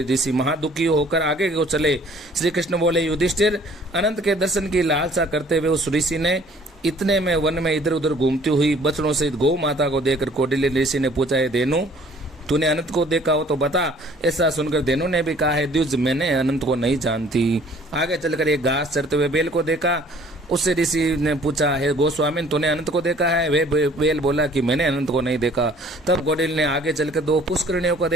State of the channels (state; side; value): normal; both; correlation 0.55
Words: ऋषि महादुखी होकर आगे को चले। श्री कृष्ण बोले, युधिष्ठिर, अनंत के दर्शन की लालसा करते हुए उस ऋषि ने इतने में वन में इधर उधर घूमती हुई बछड़ों सहित गौ माता को देखकर कौटिल्य ऋषि ने पूछा, है धेनु, तूने अनंत को देखा हो तो बता। ऐसा सुनकर धेनु ने भी कहा, है द्विज, मैंने अनंत को नहीं जानती। आगे चलकर एक घास चरते हुए बेल को देखा। उससे ऋषि ने पूछा, है गोस्वामी, तूने अनंत को देखा है? वे बेल बोला कि मैंने अनंत को नहीं देखा। तब कौटिल्य ने आगे चलकर 2 पुष्करिणियों को